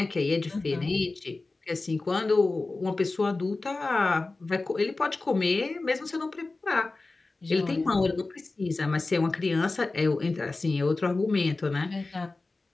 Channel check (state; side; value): quieter; right; 3.4 dB